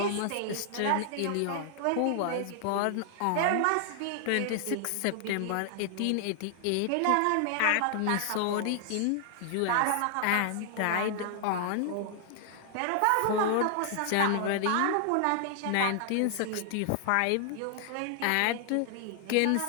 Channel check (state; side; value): different; both; correlation 0.00